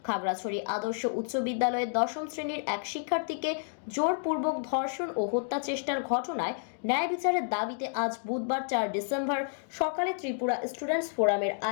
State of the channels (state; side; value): silent; right; digital silence